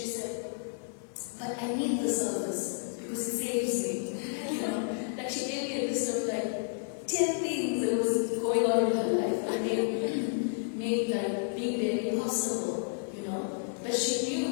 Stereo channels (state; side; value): silent; right; digital silence